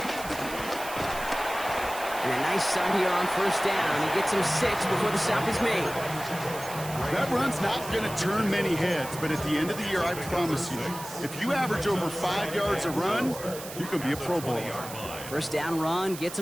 And a nice start here on first down. He gets him 6 before the stop is made. That run's not going to turn many heads, but at the end of the year, I promise you, if you average over 5 yards a run, you can be a Pro Bowler. First down run gets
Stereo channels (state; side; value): noise; right; hiss, 12 dB below the sound